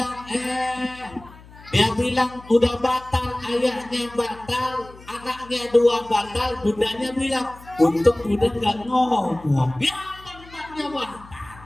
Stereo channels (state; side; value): noise; left; hum, 21 dB below the sound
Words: bilang udah batal, ayahnya batal, anaknya dua batal, bundanya bilang untuk bunda nggak ngomong, ya tempatnya batal.